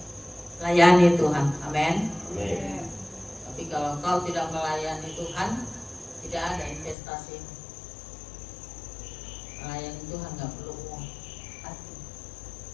Layani Tuhan, amin. Tapi kalau kau tidak melayani Tuhan, tidak ada investasi. Melayani Tuhan nggak perlu uang.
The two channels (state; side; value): drops out; right; at 7.0 s